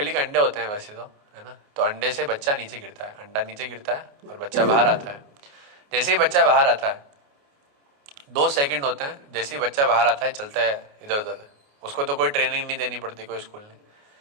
के अंडे होते हैं वैसे तो, है ना, तो अंडे से बच्चा नीचे गिरता है, अंडा नीचे गिरता है और बच्चा बाहर आता है। जैसे ही बच्चा बाहर आता है 2 सेकंड होते हैं, जैसे ही बच्चा बाहर आता है चलता है इधर उधर, उसको तो कोई ट्रेनिंग नहीं देनी पड़ती, कोई स्कूल नहीं।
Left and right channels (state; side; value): late; left; 28 ms